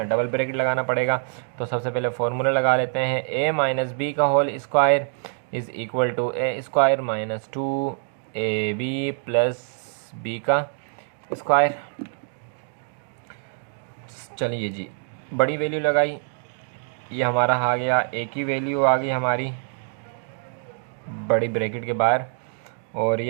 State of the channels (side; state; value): left; silent; digital silence